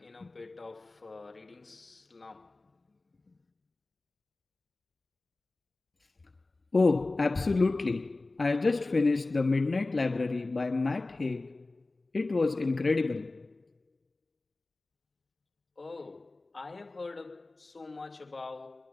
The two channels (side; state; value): right; quieter; 3.2 dB